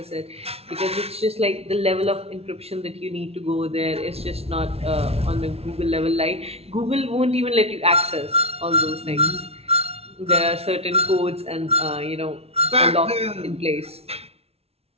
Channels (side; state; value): left; late; 0.30 ms